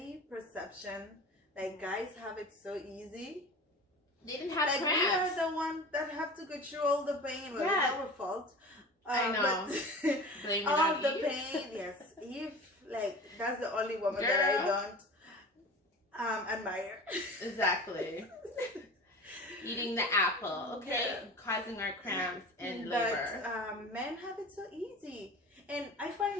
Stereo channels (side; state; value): both; normal; correlation 0.36